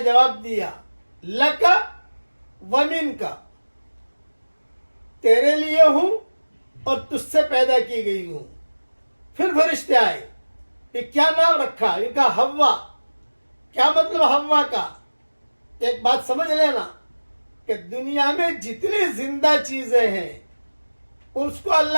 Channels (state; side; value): inverted; both; correlation -1.00